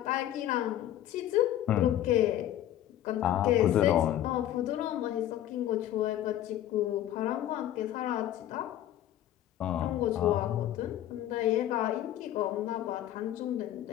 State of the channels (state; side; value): quieter; right; 12.4 dB